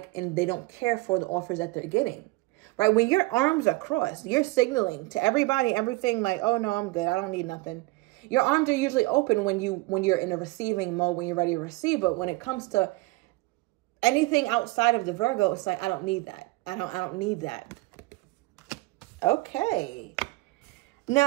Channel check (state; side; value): quieter; left; 22.0 dB